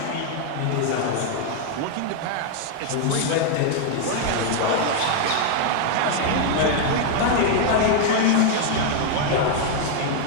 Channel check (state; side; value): different; both; correlation 0.00